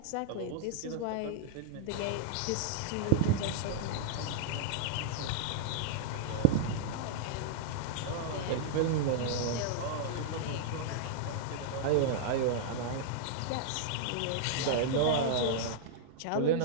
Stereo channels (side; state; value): both; different; correlation -0.01